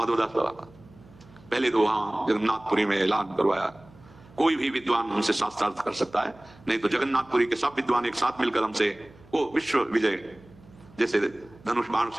बाबा का, पहले तो वहां जगन्नाथपुरी में ऐलान करवाया, कोई भी विद्वान हमसे शास्त्रार्थ कर सकता है, नहीं तो जगन्नाथपुरी के सब विद्वान एक साथ मिलकर हमसे वो विश्व विजय, जैसे धनुष बाण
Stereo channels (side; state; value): right; noise; hum, 25 dB below the sound